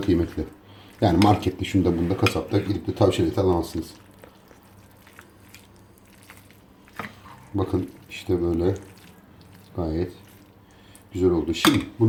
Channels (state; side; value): identical; both; correlation 1.00